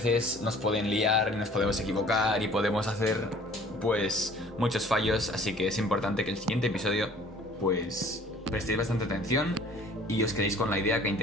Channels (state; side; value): normal; both; correlation 0.52